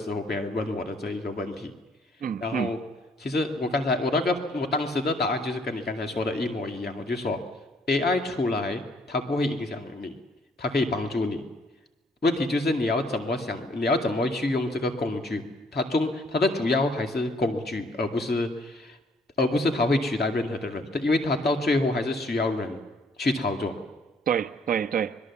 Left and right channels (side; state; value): both; normal; correlation 0.63